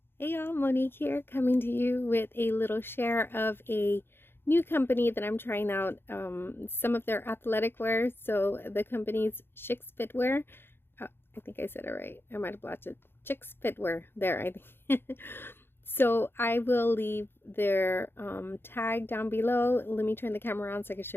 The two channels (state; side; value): late; right; 0.11 ms